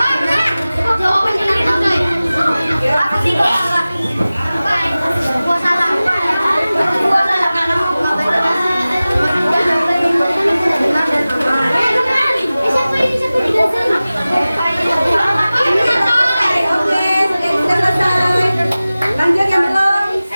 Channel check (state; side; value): inverted; both; correlation -0.97